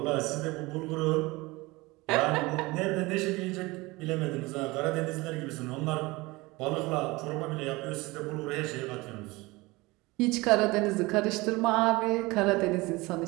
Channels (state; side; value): quieter; left; 22.4 dB